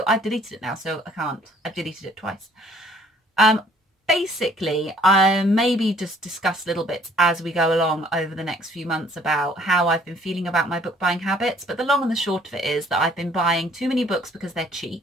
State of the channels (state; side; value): normal; both; correlation 0.60